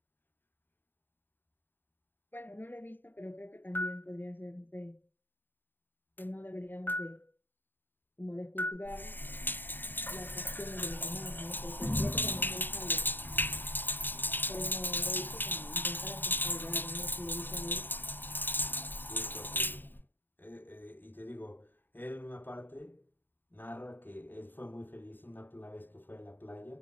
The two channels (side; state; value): right; late; 0.092 ms